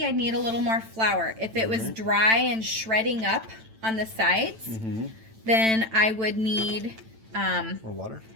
I'd need a little more flour. If it was dry and shredding up on the sides, then I would need more water?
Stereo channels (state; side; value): late; left; 9.0 ms